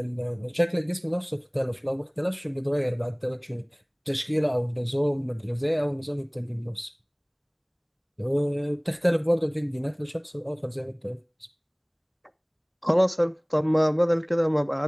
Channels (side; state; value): both; identical; correlation 1.00